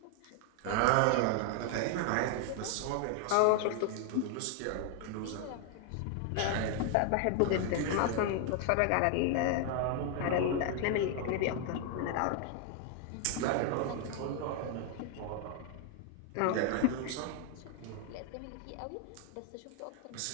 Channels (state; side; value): different; both; correlation 0.00